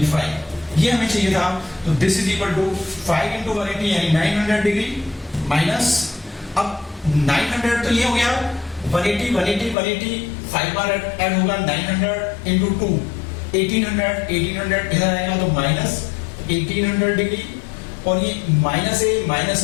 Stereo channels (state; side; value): drops out; right; at 9.8 s